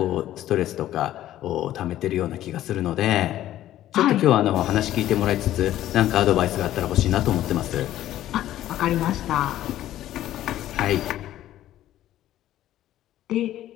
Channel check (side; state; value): right; quieter; 13.2 dB